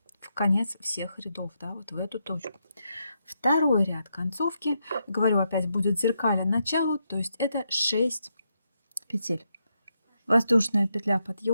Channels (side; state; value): both; inverted; correlation -0.82